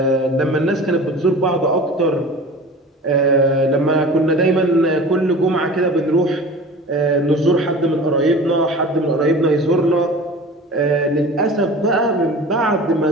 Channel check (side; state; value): both; normal; correlation 0.39